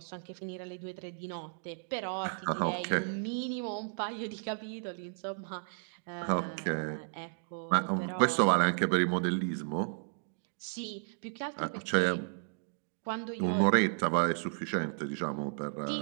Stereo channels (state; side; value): silent; left; digital silence